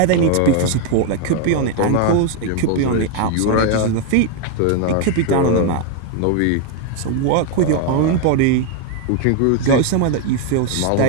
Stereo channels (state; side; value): different; both; correlation 0.01